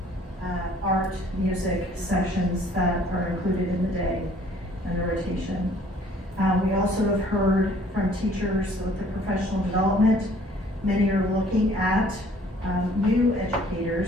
art, music sessions that are included in the day and the rotation. We also have heard from teachers with the professional development. Many are looking at new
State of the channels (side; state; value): both; normal; correlation 0.57